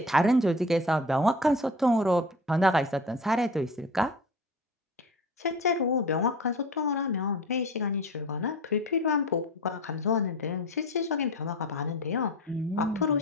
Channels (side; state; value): both; normal; correlation 0.35